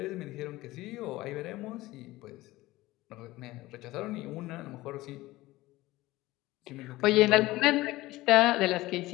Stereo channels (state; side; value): quieter; right; 18.3 dB